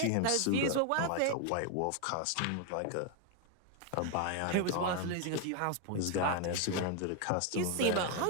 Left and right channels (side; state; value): both; different; correlation 0.01